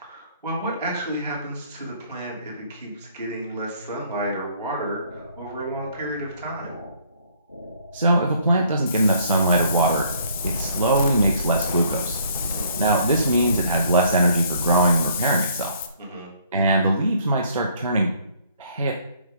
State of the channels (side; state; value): both; inverted; correlation -0.62